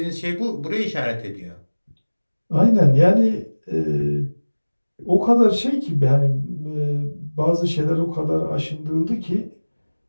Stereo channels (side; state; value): both; inverted; correlation -1.00